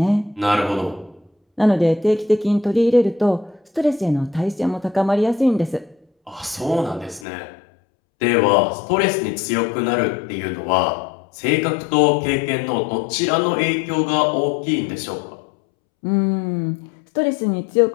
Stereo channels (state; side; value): drops out; right; at 7.2 s